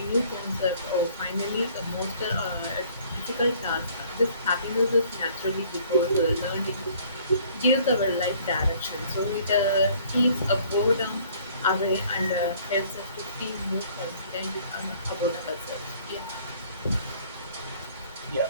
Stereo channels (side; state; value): both; inverted; correlation -0.57